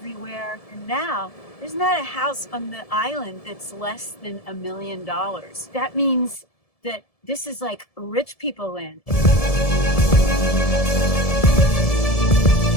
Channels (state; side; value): late; right; 1.7 ms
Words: And now there's not a house on the island that's less than $1 million. That means that this is like rich people land.